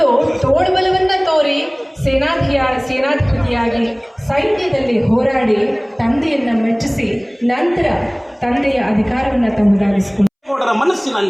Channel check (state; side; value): identical; both; correlation 1.00